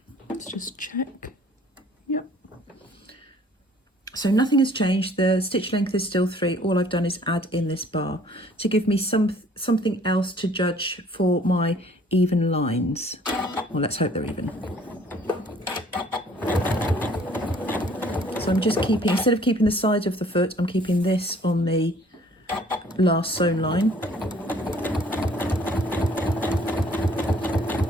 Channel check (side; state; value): both; normal; correlation 0.57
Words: Let's just check. Yep. So nothing has changed. The stitch length is still 3. All I've done is add in this bar to give me something else to judge for my even lines. Well, let's hope they're even. So I'm just keeping, instead of keeping the side of the foot, I'm keeping this on the last sewn line.